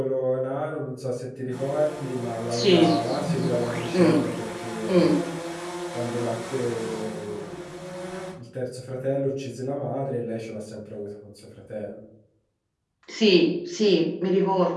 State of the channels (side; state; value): both; identical; correlation 1.00